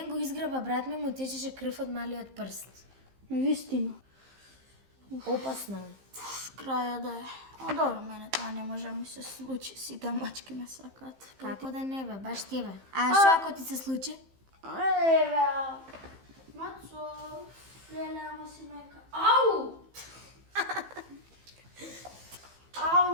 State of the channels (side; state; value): left; late; 15 ms